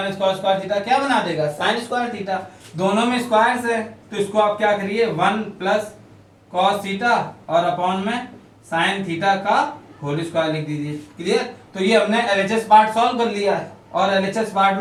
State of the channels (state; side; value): identical; both; correlation 1.00